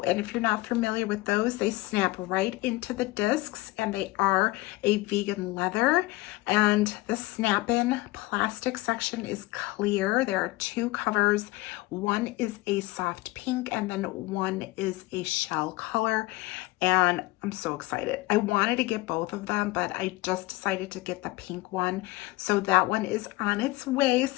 if you're not familiar with those, they snap right into the discs, and they are a vegan leather. And the snap-in plastic section is clear. There are 2 covers. One is a soft pink, and then one is a shell color. And I'm so excited. I wanted to get both of them, but I just decided to get the pink one. So that one is on its way.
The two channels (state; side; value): quieter; right; 20.7 dB